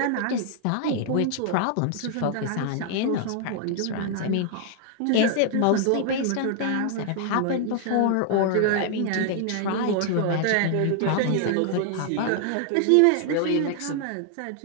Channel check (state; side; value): different; both; correlation 0.00